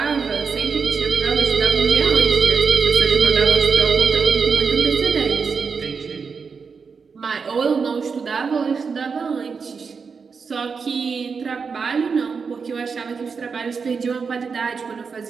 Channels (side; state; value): left; quieter; 5.4 dB